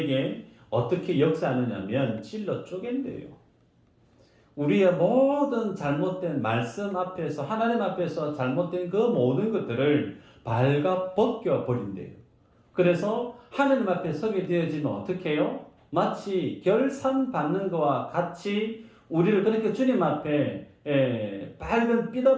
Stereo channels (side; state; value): both; identical; correlation 1.00